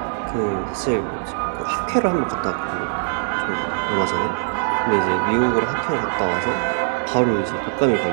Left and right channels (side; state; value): left; silent; digital silence